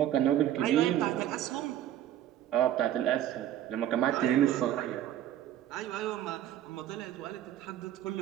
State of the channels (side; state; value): left; quieter; 11.8 dB